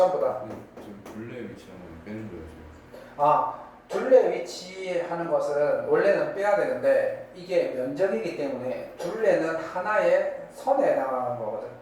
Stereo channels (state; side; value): identical; both; correlation 1.00